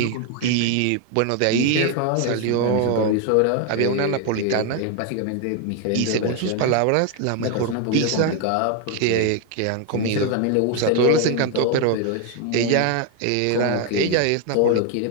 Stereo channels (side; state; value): both; different; correlation 0.01